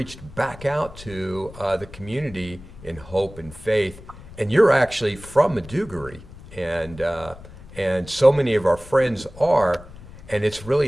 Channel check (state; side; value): noise; left; rumble, 18 dB below the sound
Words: back out to the community in hope and faith. And you're actually from Maiduguri, and so many of our friends are, and it's